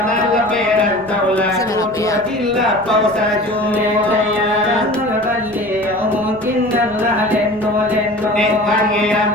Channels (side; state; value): left; noise; rumble, 25 dB below the sound